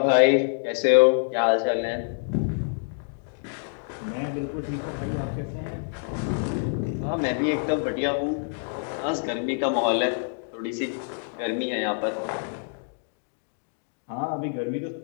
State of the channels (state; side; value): silent; right; digital silence